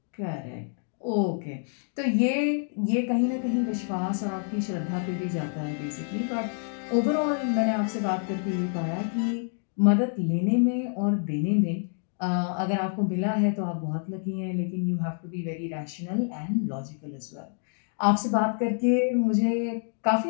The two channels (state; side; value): silent; right; 60 dB below the other